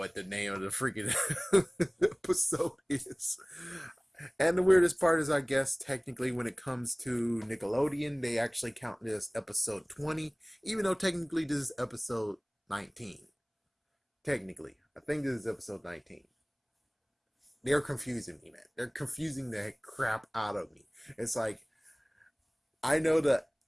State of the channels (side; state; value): both; identical; correlation 1.00